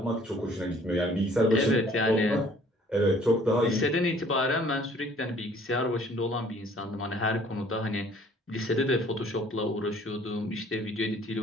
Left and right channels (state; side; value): normal; both; correlation 0.56